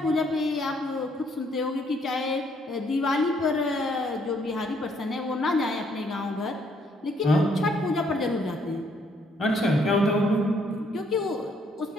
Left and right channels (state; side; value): normal; both; correlation 0.68